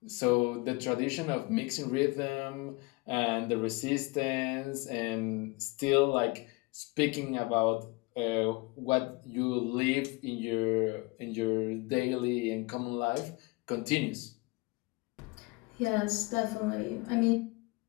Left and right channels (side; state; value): right; quieter; 25.1 dB